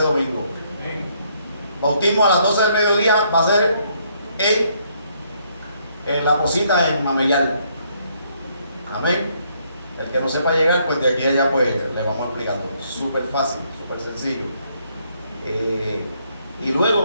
domingo. Bautismo a las 12 del mediodía va a ser en la cosita en Mameyal. Amén. El que no sepa llegar, pues de aquí a allá pues le vamos explicando. Súper fácil, súper sencillo. Y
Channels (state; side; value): inverted; both; correlation -0.70